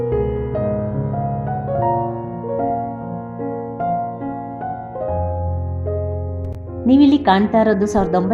ನೀವಿಲ್ಲಿ ಕಾಣ್ತಾ ಇರೋದು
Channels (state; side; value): identical; both; correlation 1.00